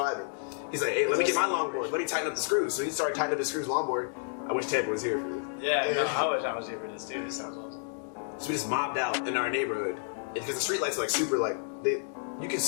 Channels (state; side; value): silent; right; 58 dB below the other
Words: He's like, "Hey, let me get my longboard. Let me tighten up the screws." So he started tightening up his screws longboard. I wish Ted was here for this. Yeah, no, I wish I was here for this too. This sounds awesome. So we just mobbed out in our neighborhood because the street lights are like super like you can